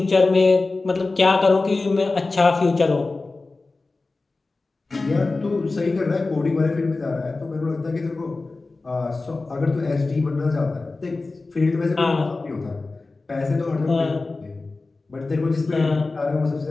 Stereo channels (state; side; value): quieter; right; 3.5 dB